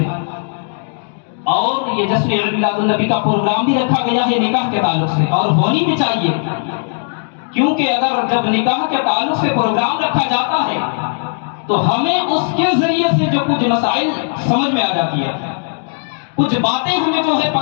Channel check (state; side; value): silent; right; 56 dB below the other